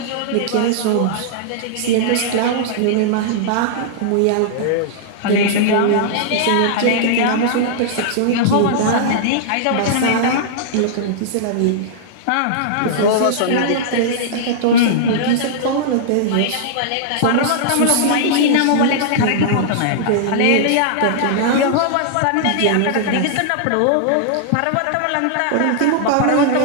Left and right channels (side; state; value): both; different; correlation -0.01